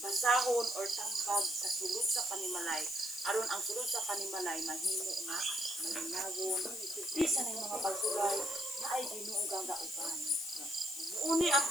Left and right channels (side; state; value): left; noise; hiss, 9 dB below the sound